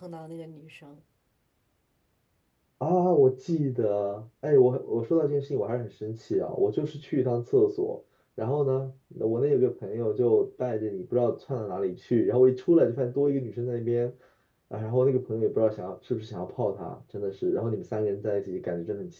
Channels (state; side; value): identical; both; correlation 1.00